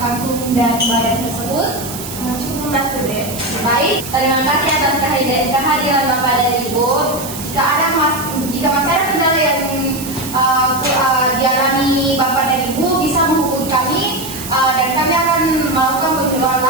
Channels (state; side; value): noise; right; hiss, 10 dB below the sound